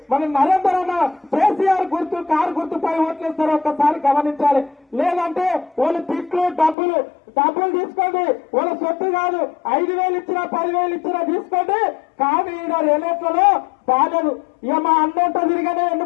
మన నరేందర్ అన్న కేసీఆర్ గుర్తు కారు గుర్తుపై ఓట్లేస్తారో ఒక్కసారి గమనించాలి. లేదంటే వాళ్ళు తిట్లు డబ్బులు తీసుకోండి, వాళ్ళ సొత్తు కాదు, 5,000 ఇచ్చినా 10,000 ఇచ్చినా తీసుకోండి. కానీ ఈయన రేలేట్లలో బాధలు ఇక మా అన్నంట తిరిగానే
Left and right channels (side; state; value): right; drops out; at 6.8 s